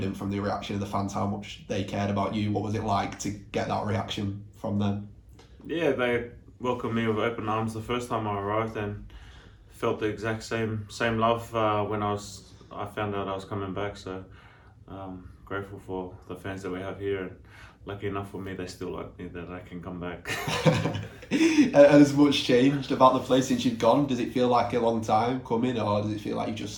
from the reaction of the fans how much they cared about you. What was it like to get that reaction from them? Yeah, they welcomed me with open arms the first time I arrived and felt the exact same love when I found out I was coming back. So grateful for the fans that we have here. And lucky enough for me, they still like me that I can come back. And has much changed about the place since you've gone? Does it feel like a long time coming, or does it feel like you just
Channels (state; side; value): identical; both; correlation 1.00